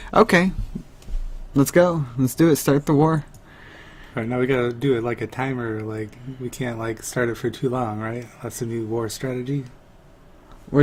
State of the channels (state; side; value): identical; both; correlation 1.00